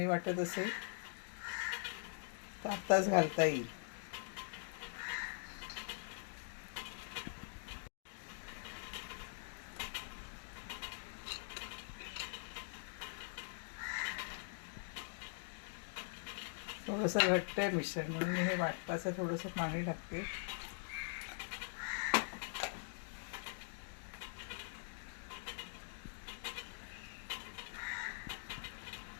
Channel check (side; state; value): right; silent; digital silence